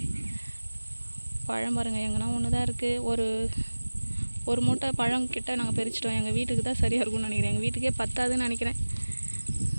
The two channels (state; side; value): inverted; both; correlation -1.00